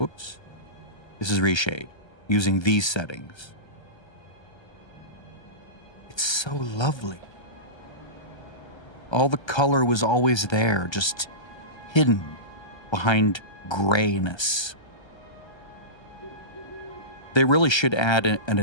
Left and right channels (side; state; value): right; late; 1.3 ms